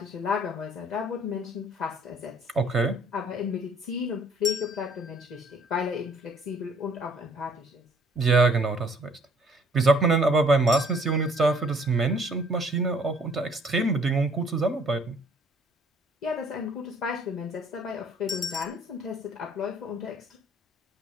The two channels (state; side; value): normal; both; correlation 0.59